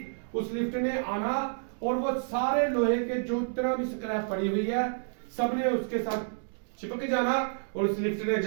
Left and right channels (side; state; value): left; silent; digital silence